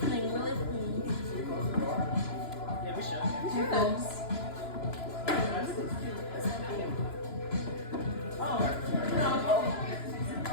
Yeah, we should. Here comes.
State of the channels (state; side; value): late; right; 2.9 ms